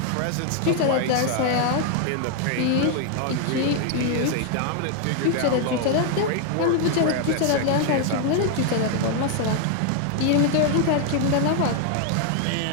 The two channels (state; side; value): different; both; correlation 0.00